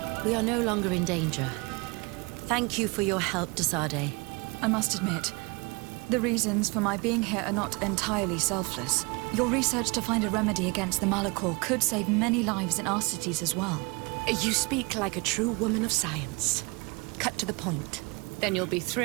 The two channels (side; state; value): left; quieter; 28.2 dB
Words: We are no longer in danger. Thank you for your help, Desade. I must admit, the reasons for my being here are not entirely selfless. Your research to find a remedy against the Malachor could save many lives in our cities as well. You speak like a true woman of science. Cut to the point. Then you'll be